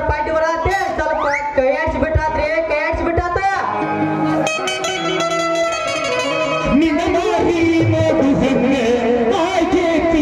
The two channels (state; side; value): identical; both; correlation 1.00